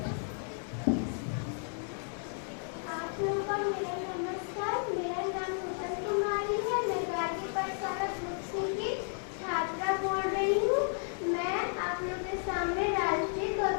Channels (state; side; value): silent; right; 56 dB below the other